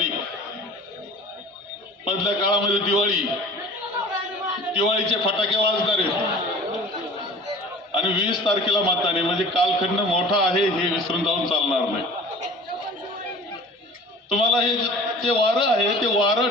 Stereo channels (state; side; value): normal; both; correlation 0.44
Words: मधल्या काळामध्ये दिवाळीचे फटाके वाजणार आहेत आणि 20 तारखेला मतदान आहे. म्हणजे कालखंड मोठा आहे, हे विसरून जाऊन चालणार नाही. तुम्हाला हे जे वारं आहे ते वारं